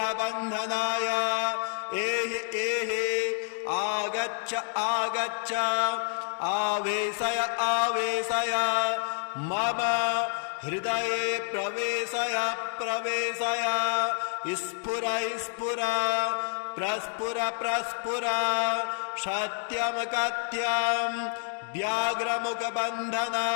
एहि एहि आगच्छ आगच्छ आवेशय आवेशय मम हृदये प्रवेशय प्रवेशय स्फुर स्फुर प्रस्फुर प्रस्फुर सत्यं कथ्यं व्याघ्रमुखबन्धन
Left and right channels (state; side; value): silent; right; 59 dB below the other